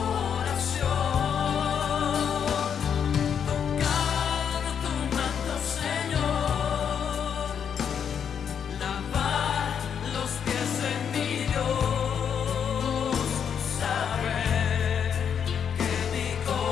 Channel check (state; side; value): quieter; right; 7.8 dB